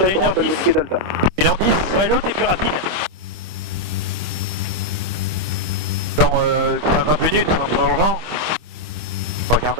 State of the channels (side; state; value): left; late; 26 ms